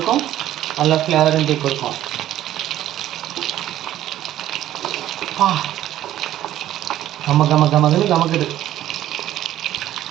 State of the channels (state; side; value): quieter; left; 12.9 dB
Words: நல்ல ஃப்ளேவரும் டீ கொடுக்கும். கமக்குது.